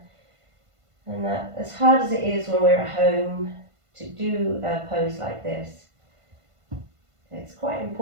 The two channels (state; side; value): late; left; 1.5 ms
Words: and that as hard as it is when we're at home to do a pose like this, it's quite